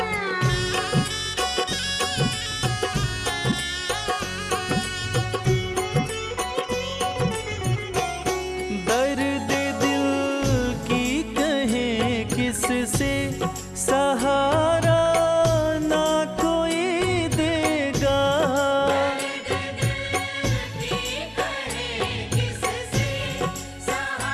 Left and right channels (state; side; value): identical; both; correlation 1.00